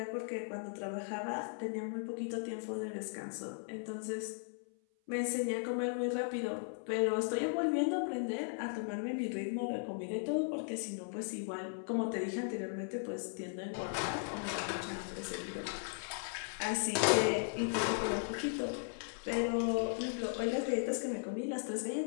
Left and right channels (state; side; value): silent; right; 53 dB below the other